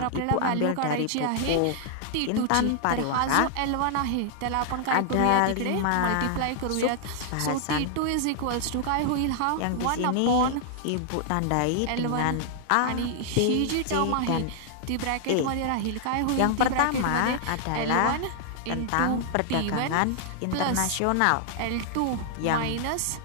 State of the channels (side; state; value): both; different; correlation 0.00